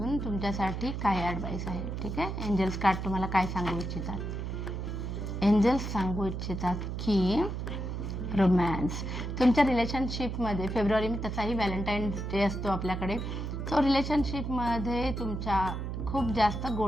तुमच्यासाठी काय ॲडवाईस आहे. ठीक आहे, एंजल्स कार्ड तुम्हाला काय सांगू इच्छितात. एंजल्स सांगू इच्छितात की रोमॅन्स तुमच्या रिलेशनशिपमध्ये फेब्रुवारी तसाही व्हॅलेंटाईन्स डे असतो आपल्याकडे. सो रिलेशनशिपमध्ये तुमच्या खूप जास्त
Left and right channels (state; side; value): noise; right; hum, 4 dB below the sound